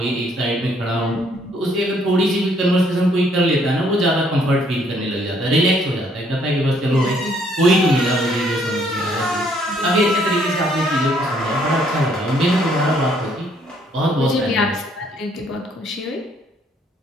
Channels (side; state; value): both; normal; correlation 0.66